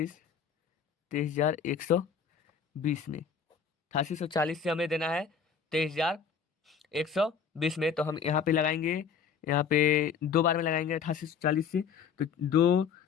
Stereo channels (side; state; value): right; quieter; 6.6 dB